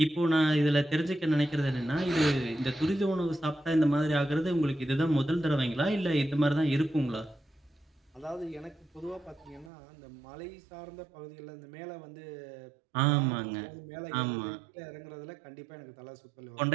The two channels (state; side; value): drops out; left; at 9.7 s